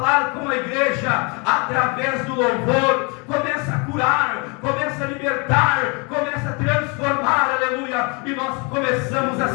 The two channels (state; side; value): quieter; right; 31.5 dB